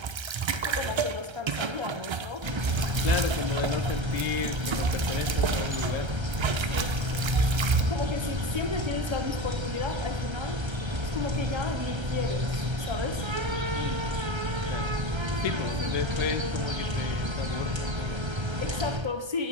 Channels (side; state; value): left; late; 1.3 ms